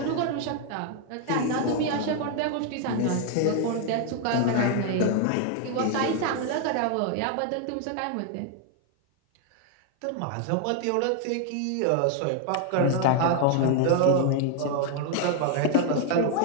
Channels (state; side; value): different; both; correlation 0.00